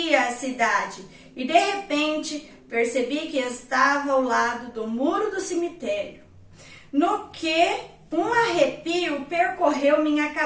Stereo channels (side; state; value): both; identical; correlation 1.00